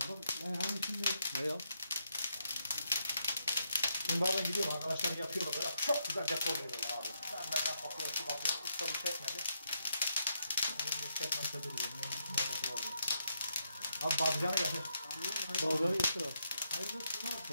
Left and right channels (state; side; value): inverted; both; correlation -0.79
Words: hani şimdi Ne ya? Şimdi bazen gidiyorum arkadaşlar yapıyorlar böyle çok güzel dekor veriyorlar abi. Ben kapıyor şu kapıyor. Usta bu çekmedi. Şimdi çekmezse duruyor. Abi bazıcanı getir. Bazıları getir abi. hayırlı